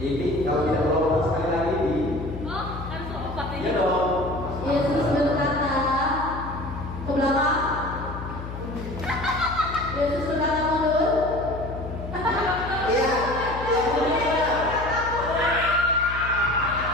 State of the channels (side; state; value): left; noise; hum, 9 dB below the sound